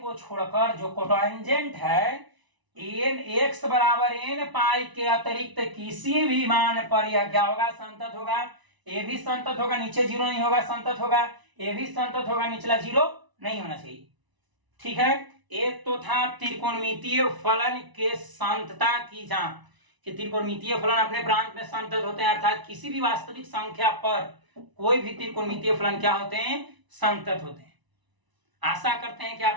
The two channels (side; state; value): left; late; 1.0 ms